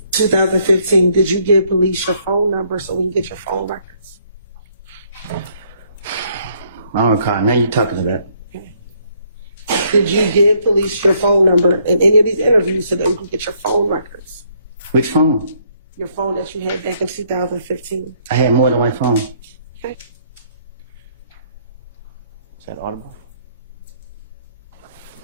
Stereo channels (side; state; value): both; inverted; correlation -0.68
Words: did you give police your phone number so we can get your phone records? I don't recall. Now you're talking about. Did you give police your phone number in any of these interviews so that we can get your phone records? Which phone? Your phone that you had back in 2015. I had more than one phone. Okay. Is that audible?